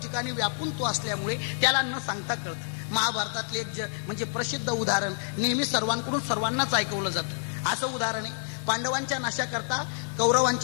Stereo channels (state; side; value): silent; right; digital silence